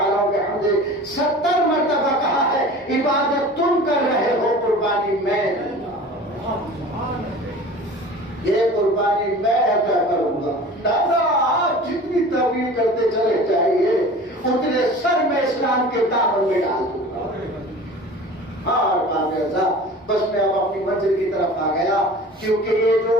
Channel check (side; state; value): both; normal; correlation 0.40